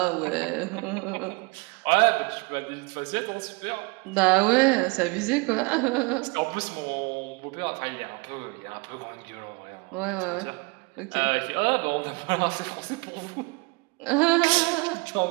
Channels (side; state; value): left; quieter; 28.7 dB